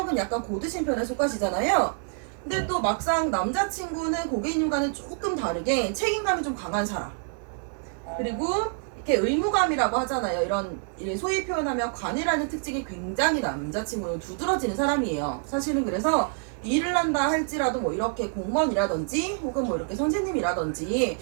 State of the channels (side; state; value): left; silent; 56 dB below the other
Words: 약간 고드신 편에 속하시잖아요. 근데 또 막상 남자친구는 고객님과는 조금 다르게 책임감이 좀 강한 사람. 그리고 이렇게 의무감이라고 하잖아요. 이런 소위 표현하면 관이라는 특징이 굉장히 남자친구는 두드러지는 사람이에요. 사실은 그래서 일을 한다 할지라도 뭐 이렇게 공무원이라든지 혹은 뭐 이렇게 선생님이라든지